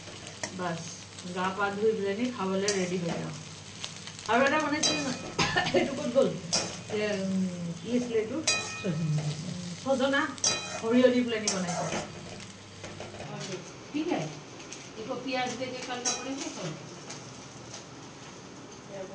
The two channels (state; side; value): identical; both; correlation 1.00